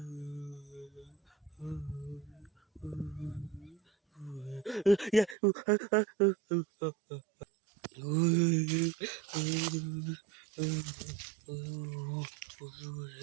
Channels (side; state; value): left; drops out; at 5.4 s